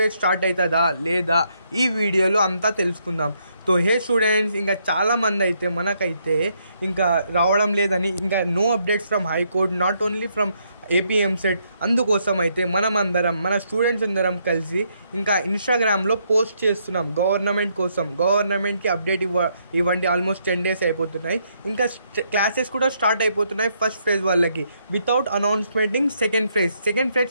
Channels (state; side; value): inverted; both; correlation -0.74